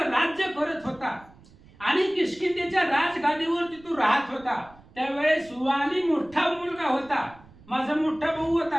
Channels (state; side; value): noise; right; rumble, 25 dB below the sound